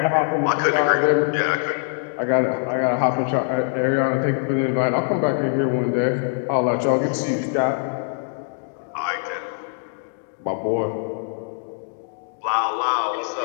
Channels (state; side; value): silent; right; digital silence